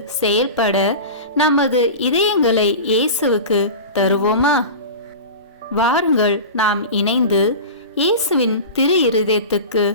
செயல்பட நமது இதயங்களை இயேசுவுக்கு தருவோமா? வாருங்கள் நாம் இணைந்து இயேசுவின் திரு இருதயத்துக்கு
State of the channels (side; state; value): both; inverted; correlation -0.30